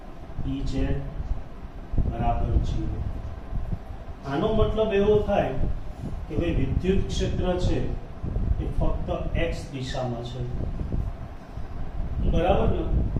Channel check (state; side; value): identical; both; correlation 1.00